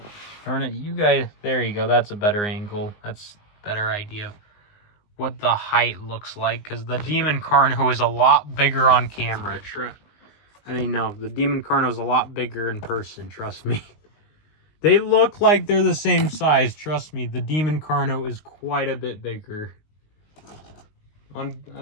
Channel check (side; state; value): right; late; 19 ms